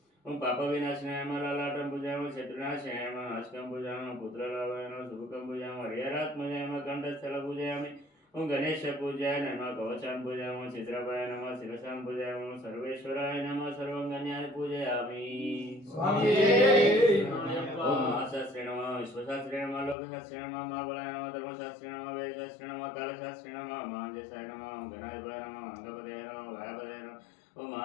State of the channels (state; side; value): drops out; right; at 20.0 s